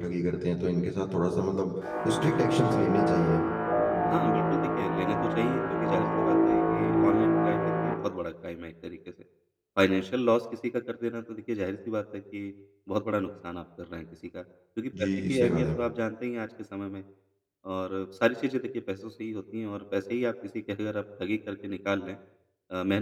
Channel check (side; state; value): both; identical; correlation 1.00